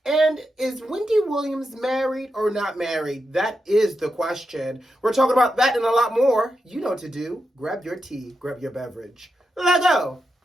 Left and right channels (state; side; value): normal; both; correlation 0.87